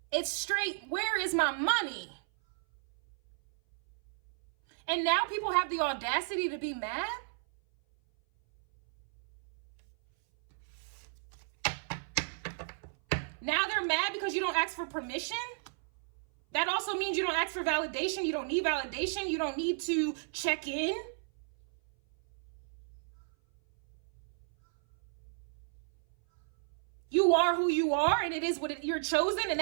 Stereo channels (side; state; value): left; silent; 55 dB below the other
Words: It's straight, where is my money? And now people have the audacity to be mad? Now they're mad because you don't ask for permission? That also means you don't ask for validation. You don't need validation. You don't need to check in. You are who you are, and it is what you're chosen, and